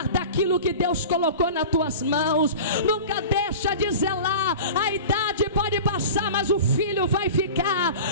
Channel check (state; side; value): inverted; both; correlation -0.35